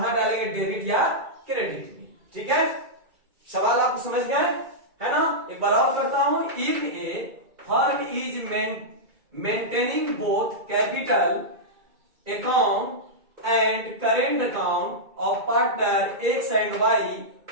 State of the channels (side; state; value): left; late; 2.3 ms